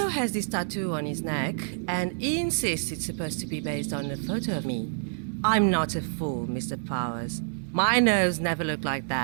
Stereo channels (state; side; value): silent; left; digital silence